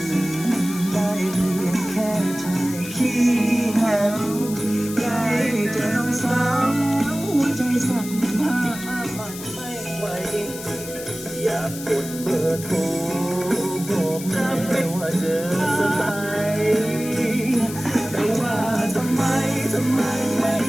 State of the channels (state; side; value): noise; left; hiss, 12 dB below the sound